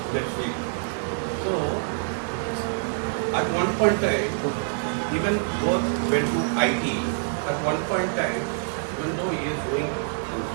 that field. So, at one point in time, even both went to IT. At one point in time, even though he is doing his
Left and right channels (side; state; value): left; silent; digital silence